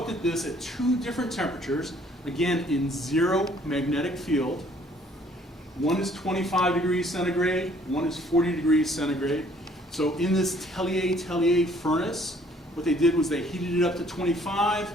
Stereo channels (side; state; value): both; normal; correlation 0.60